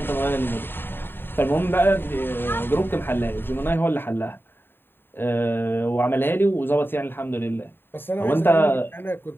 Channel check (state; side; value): late; right; 0.10 ms